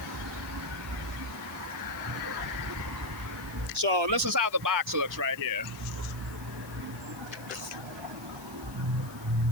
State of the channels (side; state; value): left; noise; hiss, 19 dB below the sound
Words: So this is how the box looks right here.